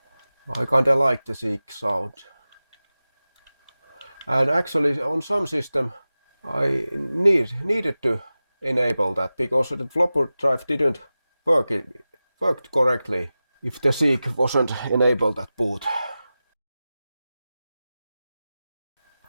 I kinda like the Seagate sound. And actually on some system I needed to enable that because the flopper drive didn't worked correctly if the Seagate wasn't enabled at boot.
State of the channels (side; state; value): both; inverted; correlation -0.95